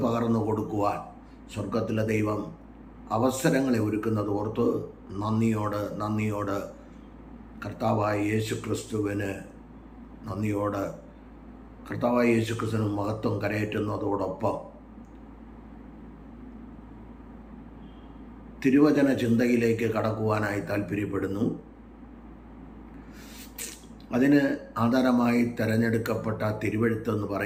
പകർന്നു കൊടുക്കുവാൻ സ്വർഗത്തിലെ ദൈവം അവസരങ്ങളെ ഒരുക്കുന്നത് ഓർത്ത് നന്ദിയോട് കർത്താവായ യേശുക്രിസ്തുവിന് നന്ദിയോട് കർത്താവായ യേശുക്രിസ്തുവിന് മഹത്വം കരയേറ്റുന്നതോടൊപ്പം തിരുവചന ചിന്തയിലേക്ക് കടക്കുവാനായി താല്പര്യപ്പെടുന്നു. അതിന് ആധാരമായി തിരഞ്ഞെടുക്കപ്പെട്ട തിരുവെഴുത്തെന്ന്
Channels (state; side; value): identical; both; correlation 1.00